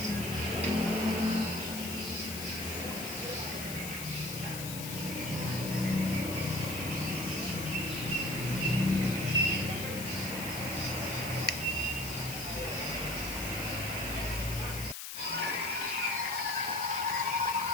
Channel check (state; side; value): noise; left; hiss, 7 dB below the sound